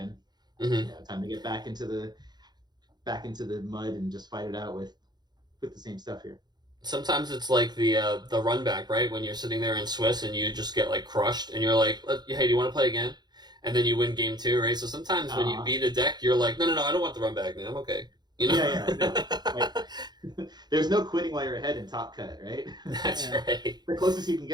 Time to get back into the mud and just fight it out with the same stuff here. Sometimes it's like the run back, right? When you're sitting there in Swiss and you just get like crushed, and you're like, hey, do you want to play again? And then you win game 2, right? So sometimes when you beat a deck, you're like, no, I don't want the run back, man. I'm okay. There's no quitting while you're ahead in Top Cut, right? That's right. The closest you can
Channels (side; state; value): left; late; 0.20 ms